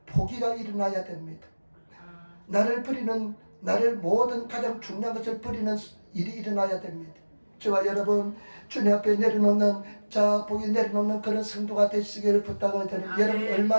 포기가 일어나야 됩니다. 나를 모든 가장 중요한 것을 버리는 일이 일어나야 됩니다. 저와 여러분 주님 앞에 내려놓는 복이 내려놓는 그런 성도가 되시기를 부탁을 드립니다. 여러분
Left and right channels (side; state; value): both; inverted; correlation -1.00